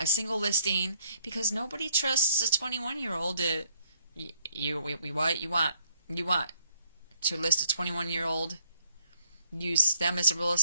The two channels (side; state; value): both; inverted; correlation -0.67